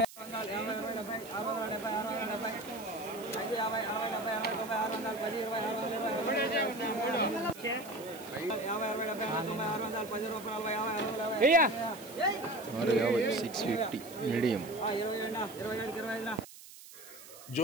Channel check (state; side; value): noise; right; hiss, 17 dB below the sound